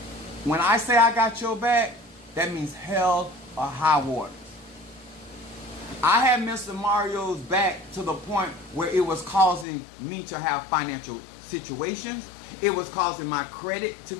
When I say I got your back, that means hell or high water. I had Mr. Mario's back to the point where it was causing me to have financial situations. It was causing my credit to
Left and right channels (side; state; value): right; drops out; at 9.7 s